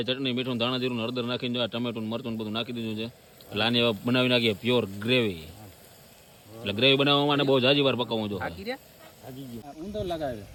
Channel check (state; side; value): identical; both; correlation 1.00